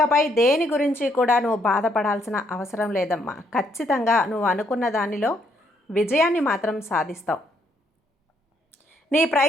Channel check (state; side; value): normal; both; correlation 0.72